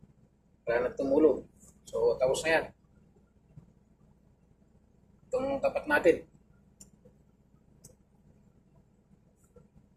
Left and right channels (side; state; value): both; identical; correlation 1.00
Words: wala na tumulog. So tapos na yan itong tapat natin.